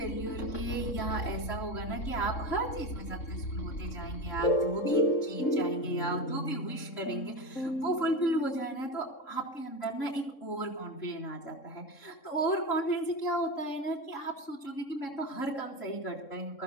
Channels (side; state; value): right; late; 3.7 ms